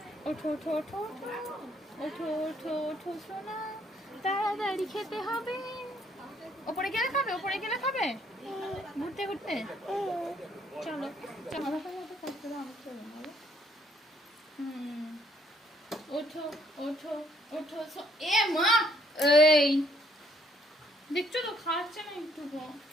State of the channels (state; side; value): normal; both; correlation 0.68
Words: ওঠো ওঠো ওঠো ওঠো ওঠো ওঠো সোনা, তাড়াতাড়ি খেতে হবে। ওপরে গেলে খাবে, ওপরে গেলে খাবে, ঘুরতে ঘুরতে। চলো চলো, ওঠো ওঠো ওঠো। এ মা, এই দেখছো তো খাচ্ছে না একটু,